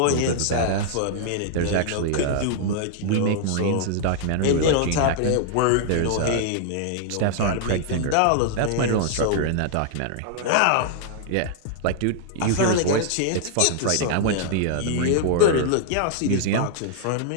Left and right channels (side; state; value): both; different; correlation -0.01